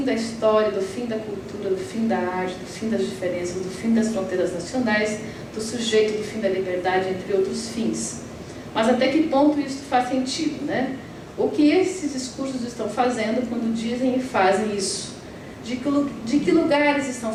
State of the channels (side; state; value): both; identical; correlation 1.00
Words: da história, do fim da cultura, do fim da arte, do fim das diferenças, do fim das fronteiras nacionais, do sujeito, do fim da liberdade, entre outros fins. Mas até que ponto isso faz sentido, né? O que esses discursos estão fazendo quando dizem e fazem isso? De que lugares estão